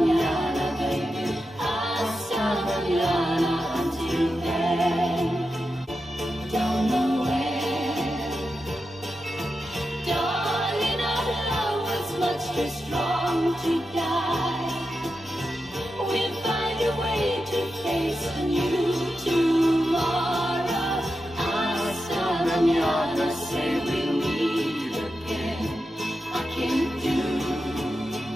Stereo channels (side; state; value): both; normal; correlation 0.89